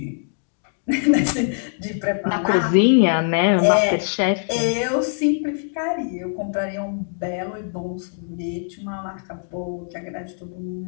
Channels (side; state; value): right; silent; digital silence